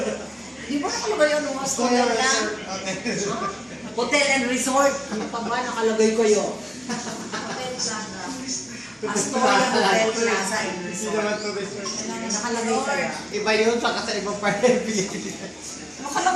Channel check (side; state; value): both; identical; correlation 1.00